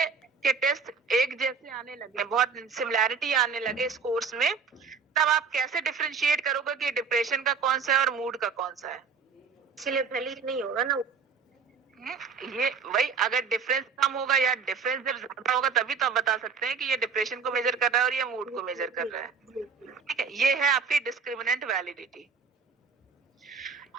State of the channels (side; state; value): left; quieter; 5.6 dB